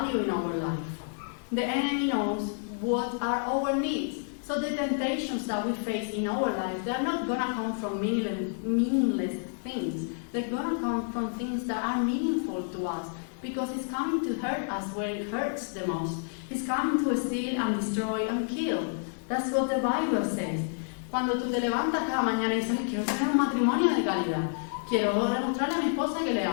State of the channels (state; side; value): silent; right; digital silence